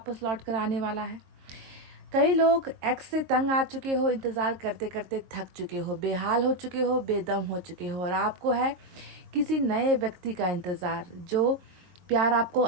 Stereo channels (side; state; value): left; late; 22 ms